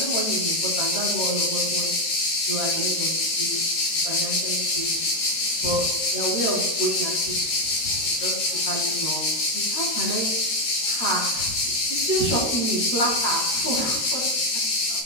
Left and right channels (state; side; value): late; right; 13 ms